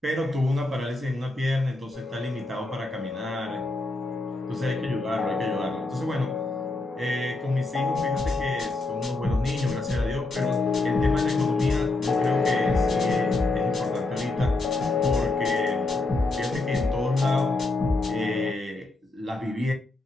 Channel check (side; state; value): right; quieter; 3.0 dB